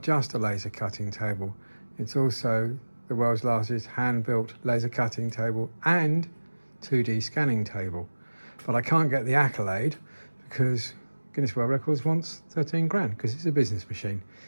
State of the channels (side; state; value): both; inverted; correlation -1.00